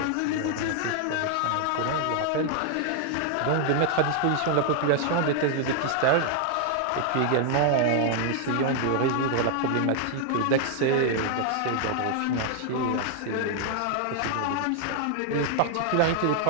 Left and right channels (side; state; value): both; different; correlation 0.00